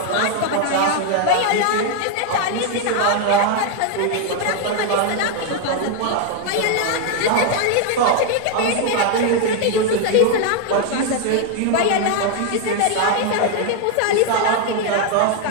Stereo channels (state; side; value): different; both; correlation 0.00